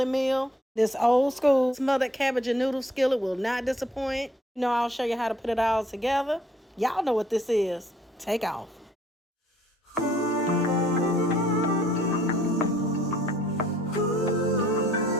meal. This old school smothered cabbage and noodle skillet will not disappoint. You know, I'll show you how to put it all together. Y'all know what this is. Take off.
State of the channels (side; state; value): both; normal; correlation 0.63